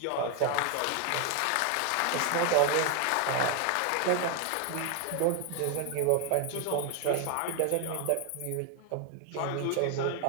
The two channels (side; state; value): both; different; correlation 0.01